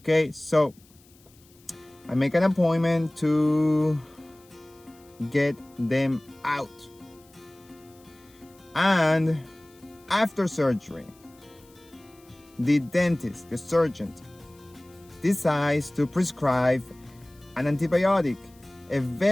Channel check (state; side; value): noise; left; hiss, 29 dB below the sound